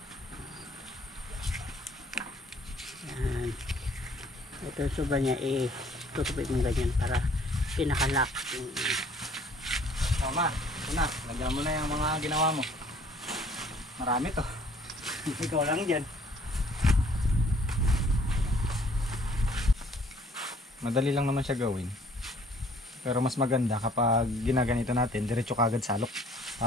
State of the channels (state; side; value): normal; both; correlation 0.58